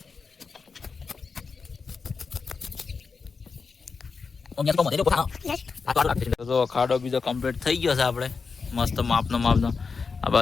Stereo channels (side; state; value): right; quieter; 4.9 dB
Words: ખાડો બીજો કમ્પ્લીટ થઈ ગયો છે. આપણે મસ્ત માપનો. આ